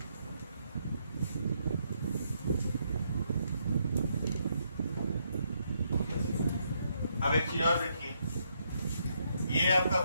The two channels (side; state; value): both; inverted; correlation -0.76